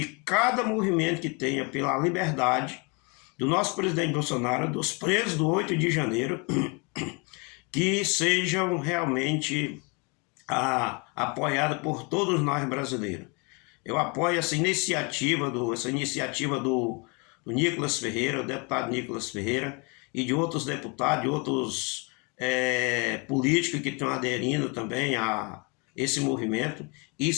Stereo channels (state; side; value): quieter; right; 31.7 dB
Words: cada movimento que tenha pela liberdade do nosso presidente Bolsonaro, dos presos do 8 de janeiro, que sejam realmente apoiados por todos nós brasileiros. Eu apoio essa iniciativa do Nicolas Ferreira, o deputado Nicolas Ferreira, e de outros deputados, de outros políticos que estão aderindo também a esse movimento.